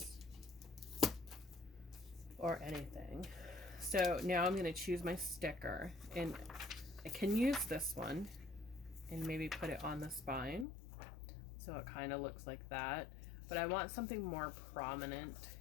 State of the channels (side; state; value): right; drops out; at 10.7 s